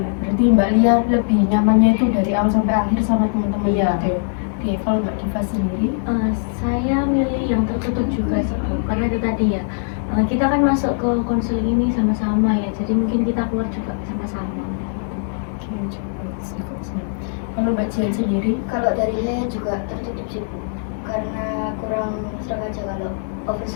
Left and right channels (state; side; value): silent; right; 57 dB below the other